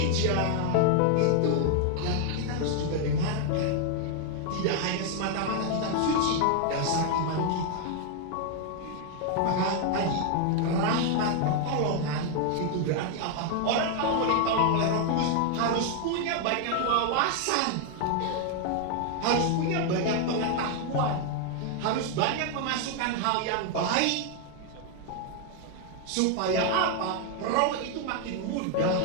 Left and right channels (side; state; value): both; different; correlation 0.00